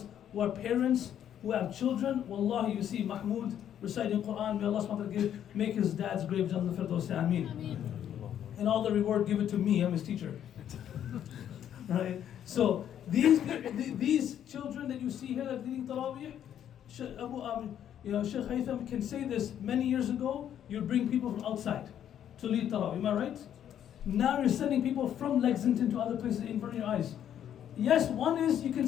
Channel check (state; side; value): quieter; right; 10.0 dB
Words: who are parents, who have children, wallahi, you see Mahmoud reciting Quran, may Allah subhanahu wa ta'ala make his dad's grave Jannah al-Firdaus, Ameen. And all the reward, give it to me, I'm his teacher. Right? So these children that you see here that are leading Taraweeh, Sheikh Haytham can say this. Many years ago, you'd bring people from outside to lead Taraweeh, am I right? Now you're sending people from Lexington to other places in front of your eyes. Yes, one is you can